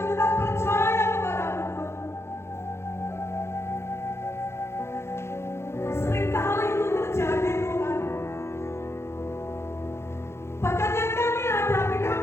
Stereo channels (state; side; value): late; right; 0.13 ms